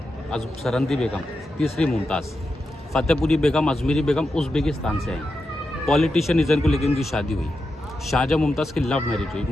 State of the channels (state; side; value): normal; both; correlation 0.88